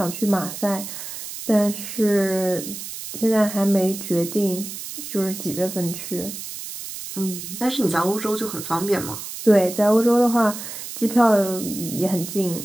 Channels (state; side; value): noise; right; hiss, 9 dB below the sound